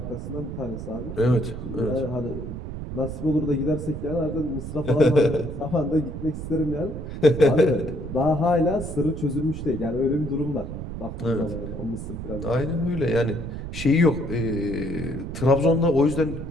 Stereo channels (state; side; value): noise; right; rumble, 7 dB below the sound